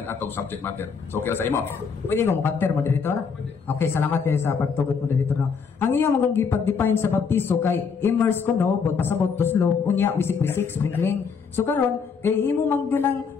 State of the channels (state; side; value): quieter; right; 5.8 dB